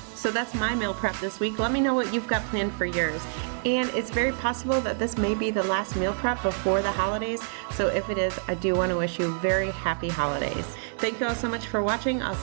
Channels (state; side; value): silent; left; digital silence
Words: So that's my meal prep this week. Let me know what you've got planned for yours. And it's very possible that this may be the last meal prep before the holidays. So if it is, I do want to wish you very happy holidays. Thank you all so much for watching. I'll